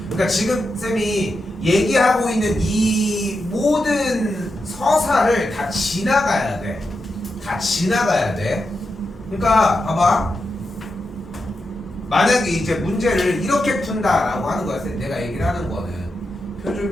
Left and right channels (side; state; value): both; normal; correlation 0.88